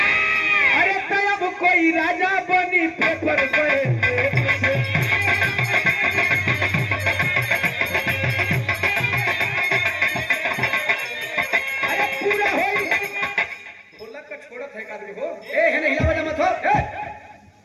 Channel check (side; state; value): both; identical; correlation 1.00